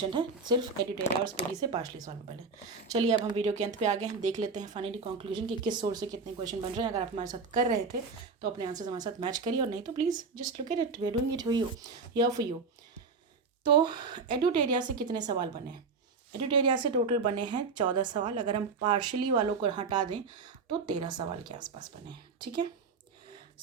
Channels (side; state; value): left; quieter; 4.6 dB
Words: है, सिर्फ एडिटेरिया और स्पीडी से पार्शली सॉल्वेबल है। चलिए अब हम वीडियो के अंत पे आ गए हैं, देख लेते हैं फाइनली कंक्लूजन कि किस सोर्स से कितने क्वेश्चन बन रहे हैं। अगर आप हमारे साथ कर रहे थे तो अपने आंसर्स हमारे साथ मैच करिए, और नहीं तो please just look at it, we are doing it for you, here for you. तो एडिटेरिया से कितने सवाल बने हैं? एडिटेरिया से टोटल बने हैं 14 सवाल, अगर हम पार्शली वालों को हटा दें तो 13 सवाल के आसपास बने हैं, ठीक है।